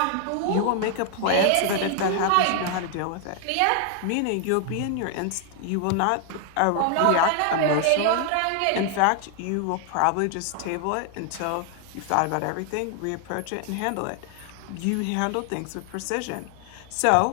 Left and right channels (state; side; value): different; both; correlation 0.00